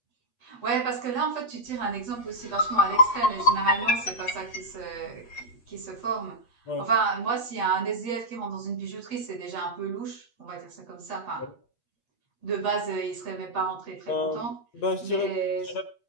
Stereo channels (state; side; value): late; right; 8.4 ms